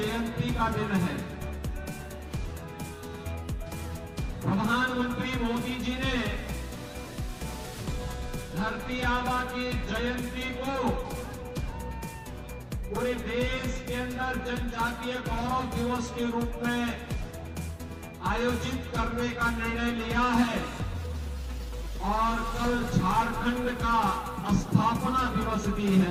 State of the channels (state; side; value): identical; both; correlation 1.00